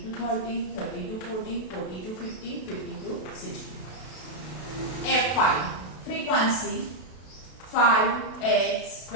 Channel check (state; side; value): late; right; 32 ms